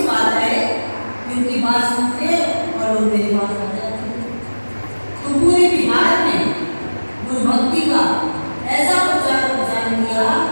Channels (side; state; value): both; inverted; correlation -1.00